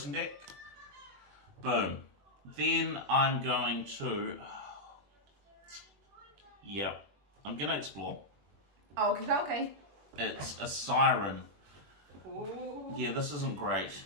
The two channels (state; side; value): late; left; 21 ms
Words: deck. Boom. Then I'm going to... Yep. I'm going to explore. Oh, okay. It's a siren. Ooh. Yeah, this isn't great.